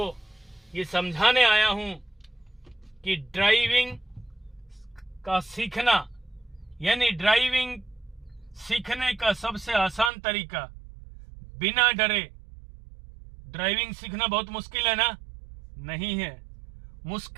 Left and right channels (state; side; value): drops out; left; at 10.1 s